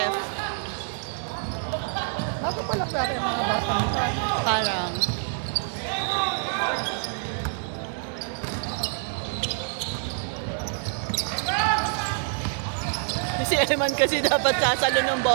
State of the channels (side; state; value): left; silent; 61 dB below the other